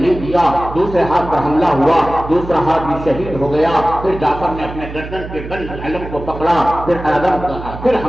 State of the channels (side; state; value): right; noise; hum, 11 dB below the sound